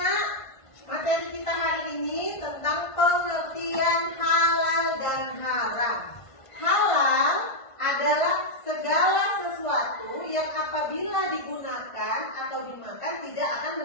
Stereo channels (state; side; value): late; right; 1.5 ms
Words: materi kita hari ini tentang pengertian halal dan haram. Halal adalah segala sesuatu yang apabila digunakan atau dimakan tidak akan